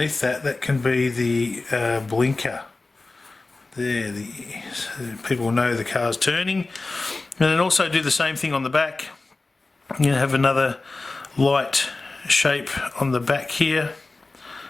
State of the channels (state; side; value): quieter; right; 3.4 dB